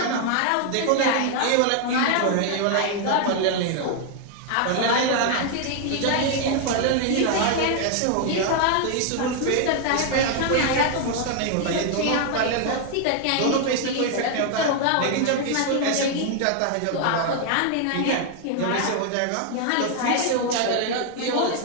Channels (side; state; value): both; different; correlation 0.00